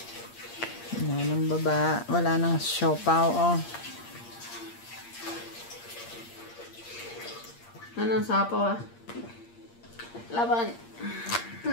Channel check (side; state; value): right; late; 8.6 ms